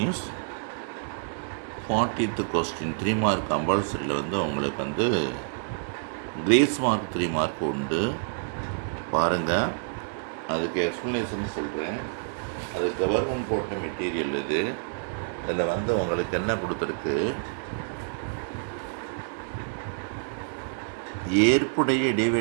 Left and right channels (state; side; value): silent; left; digital silence